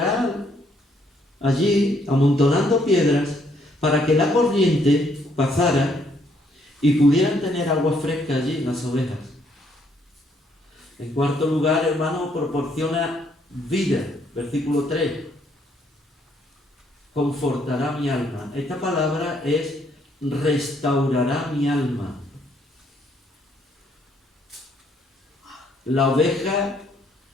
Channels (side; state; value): both; normal; correlation 0.69